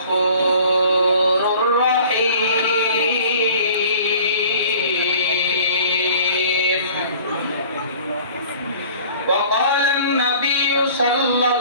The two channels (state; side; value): inverted; both; correlation -0.48